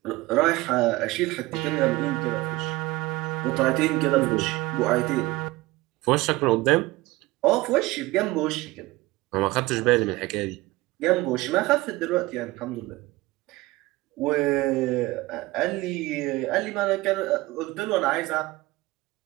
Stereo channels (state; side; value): quieter; left; 20.0 dB